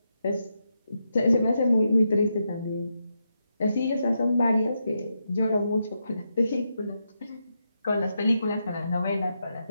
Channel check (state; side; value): inverted; both; correlation -0.84